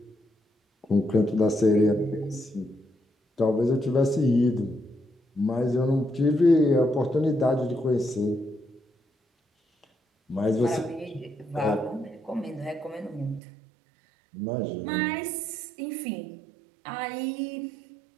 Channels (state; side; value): drops out; left; at 13.4 s